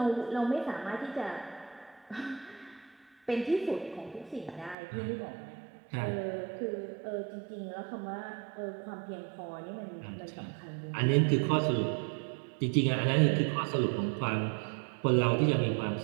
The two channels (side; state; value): left; drops out; at 4.8 s